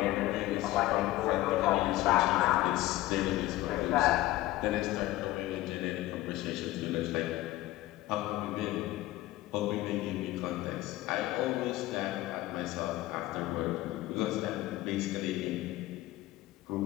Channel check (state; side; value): quieter; right; 16.8 dB